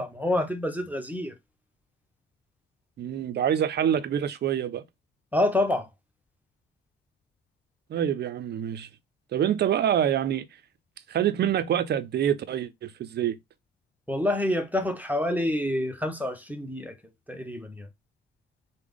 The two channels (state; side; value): quieter; left; 4.1 dB